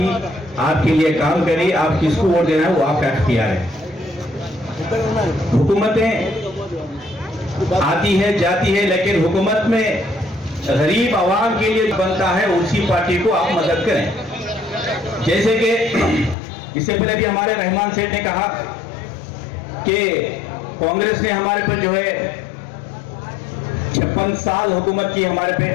आपके लिए काम करे, आप किसको वोट देना है वो आपका इख्तियार है। हुकूमतें आती है जाती है, लेकिन हुकूमत में गरीब आवाम के लिए बनता है उसी पार्टी को आप मदद करें। जैसे कि इससे पहले भी हमारे रहमान सेठ ने कहा कि कांग्रेस ने हमारे पर जो है 56 साल हुकूमत की हमारे पे,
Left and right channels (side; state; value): right; drops out; at 16.4 s